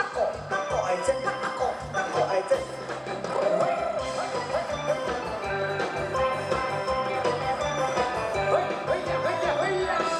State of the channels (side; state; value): both; identical; correlation 1.00